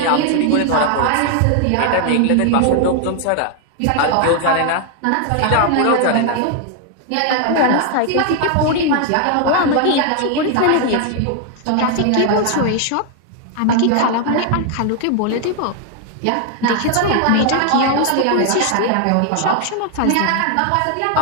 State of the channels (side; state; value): both; different; correlation 0.00